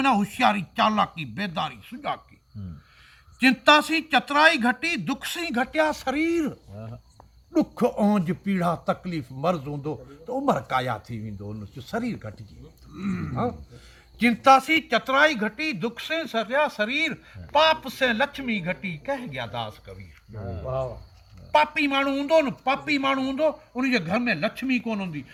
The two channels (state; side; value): identical; both; correlation 1.00